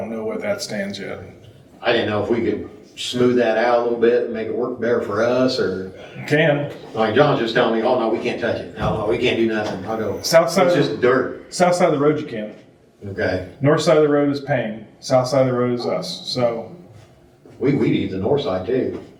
know where that stands yet. I didn't know if we could smooth that out a little bit and make it work better for us, or, Can. like, John's just telling me, oh, no, we can't touch it. No, we can't do nothing. I go, it's South side, just dirt. south side of the road you can. Okay. North side of the road is Payne. South side of the road is us. So, We need the north side too.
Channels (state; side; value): identical; both; correlation 1.00